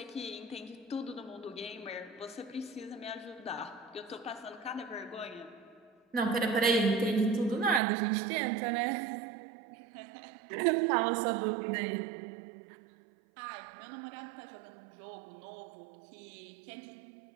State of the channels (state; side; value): drops out; left; at 7.8 s